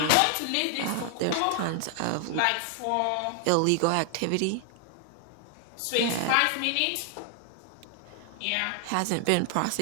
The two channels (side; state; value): both; different; correlation 0.00